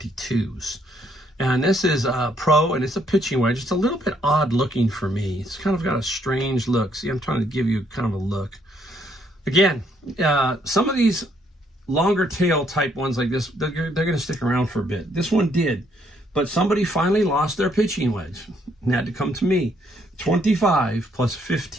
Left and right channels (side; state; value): both; normal; correlation 0.70